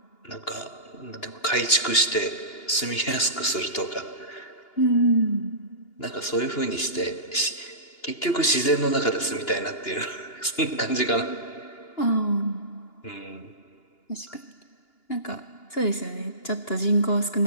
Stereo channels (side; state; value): right; late; 2.8 ms